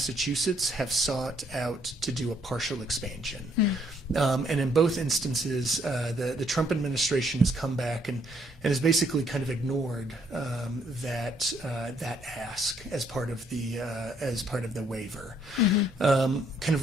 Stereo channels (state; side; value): normal; both; correlation 0.69